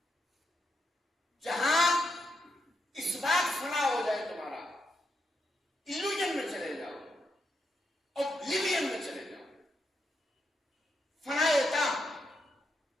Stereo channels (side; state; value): both; normal; correlation 0.82